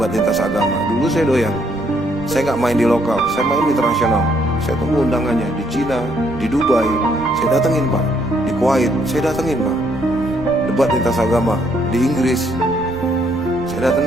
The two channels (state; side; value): noise; right; rumble, 16 dB below the sound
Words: lintas agama. Dulu saya doyan. Saya gak main di lokal, saya main di internasional. Saya tunggu undangannya di Cina, di Dubai, saya datengin, Pak. Di Kuwait, saya datengin, Pak. Debat lintas agama di Inggris, saya